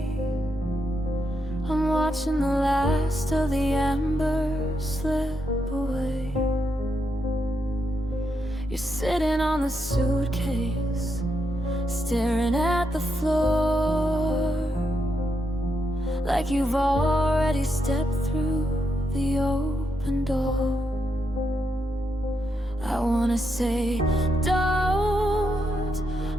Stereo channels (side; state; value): both; normal; correlation 0.82